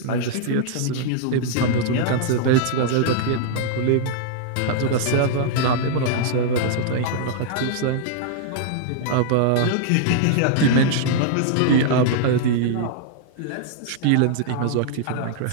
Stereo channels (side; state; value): both; different; correlation -0.01